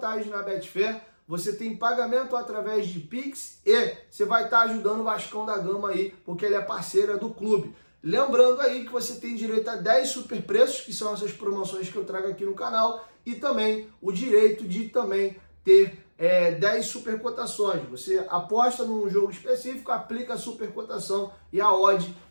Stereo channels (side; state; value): both; inverted; correlation -1.00